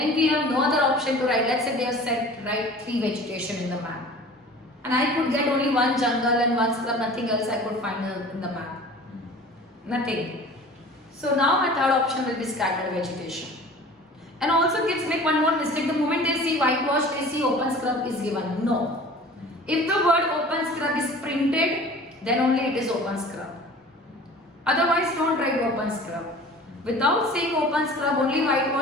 we have no other option to write, let's say they have said write 3 vegetation in the map. And I could get only 1 jungle and 1 scrub, nothing else I could find in the map. Nothing. So now my third option will be scattered vegetation. And also kids make one more mistake. The moment they see whitewash, they see open scrub is given. No. If the word open scrub is printed, then only it is open scrub. Otherwise don't write open scrub. Without saying open scrub, only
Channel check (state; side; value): normal; both; correlation 0.43